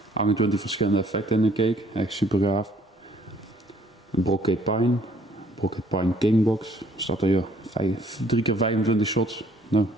28 verschillende effecten in de cake, echt super gaaf. Een Brocade Pine Kingbox, staat er hier 3x25 shots. Nou.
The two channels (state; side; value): normal; both; correlation 0.62